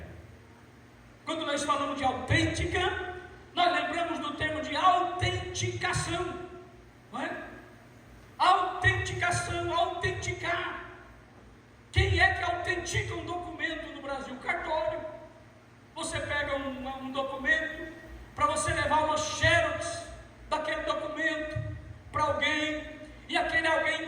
Quando nós falamos de autêntica, nós lembramos do termo de autenticação, não é? Autenticação, autenticar. Quem é que autentica um documento no Brasil? Cartório. Você pega um documento, para você levar uma xerox daquele documento para alguém, e aquele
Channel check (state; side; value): identical; both; correlation 1.00